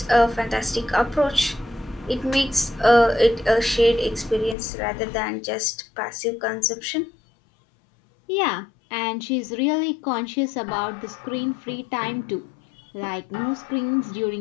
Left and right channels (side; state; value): right; drops out; at 4.5 s